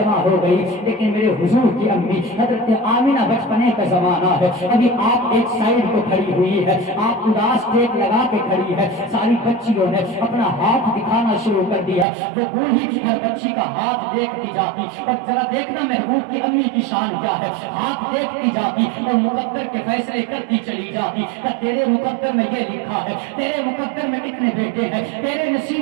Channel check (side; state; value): left; drops out; at 12.1 s